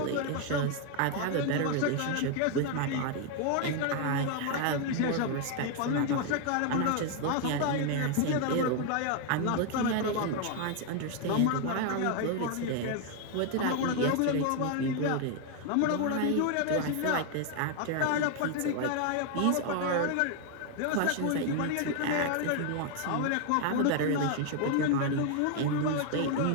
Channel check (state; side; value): different; both; correlation 0.01